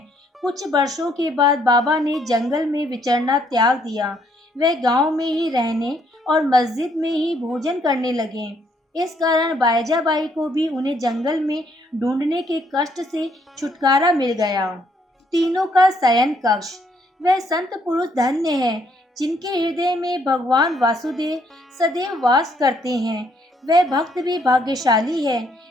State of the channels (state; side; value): normal; both; correlation 0.69